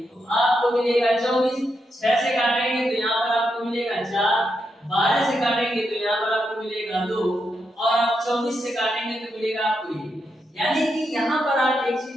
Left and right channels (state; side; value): normal; both; correlation 0.83